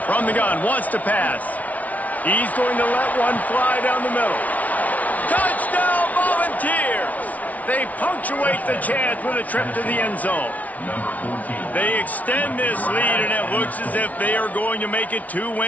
From the gun, wants to pass. He's going to let one fly down the middle. Touchdown, Volunteers! They punctuate the chance with a trip to the end zone. They extend this lead, and it looks as if they are going to make it 2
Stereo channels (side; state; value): right; late; 0.071 ms